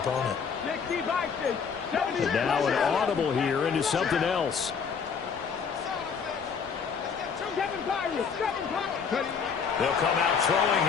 And now an audible here into something else. They'll come out throwing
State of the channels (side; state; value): right; quieter; 6.2 dB